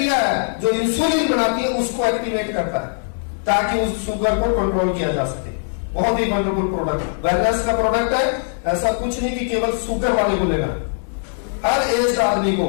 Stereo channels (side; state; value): right; silent; digital silence